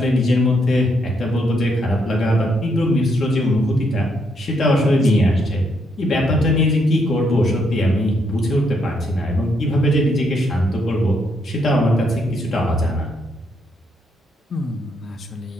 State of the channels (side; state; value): both; normal; correlation 0.75